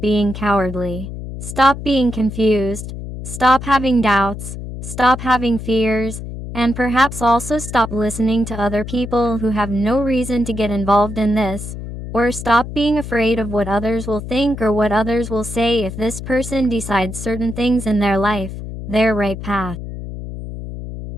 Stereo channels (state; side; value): noise; left; hum, 9 dB below the sound